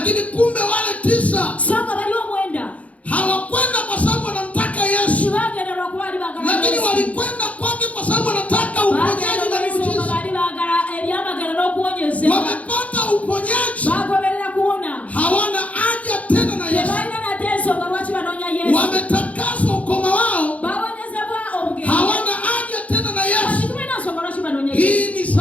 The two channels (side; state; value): right; late; 0.067 ms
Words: kumbe wale 9 songa bali omwenda hawakwenda kwa sababu wanamtaka Yesu. Bagenda lwakuba bali baagala Yesu. Lakini walikwenda kwake kwa sababu wanataka uponyaji na miujiza. Bali baagala ebyamagero n'okuwonyezebwa. Wamepata uponyaji. Bagoberera kuwona. Hawana haja tena na Yesu. Tebalina nate ensonga lwaki banoonya Yesu. Wametakaswa ukoma wao. Bawonyezebwa obugezi. Hawana haja tena na Yesu. Tulina nsonga lwaki banoonya Yesu. Hii ni